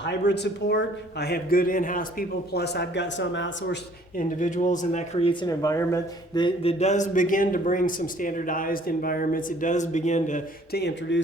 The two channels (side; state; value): both; normal; correlation 0.58